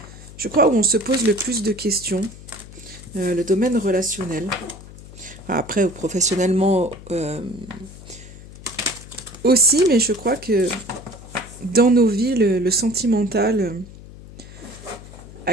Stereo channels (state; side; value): noise; left; hum, 17 dB below the sound